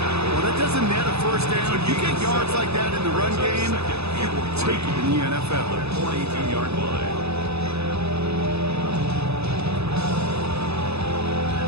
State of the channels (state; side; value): late; left; 0.79 ms